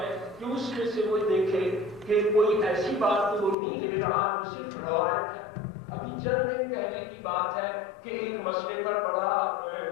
کہ اس میں سے وہ دیکھے کہ کوئی ایسی بات تو وہ نہیں لے رہا جو صرف روایت ہے. ابھی چند دن پہلے کی بات ہے کہ ایک مسئلے پر بڑا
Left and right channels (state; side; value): drops out; right; at 3.6 s